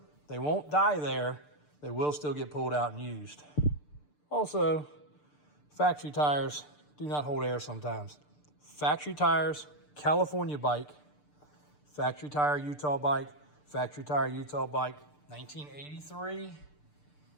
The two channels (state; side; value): late; right; 6.8 ms